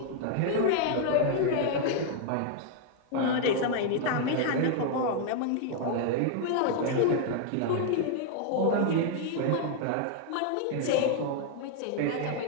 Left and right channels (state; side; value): different; both; correlation -0.01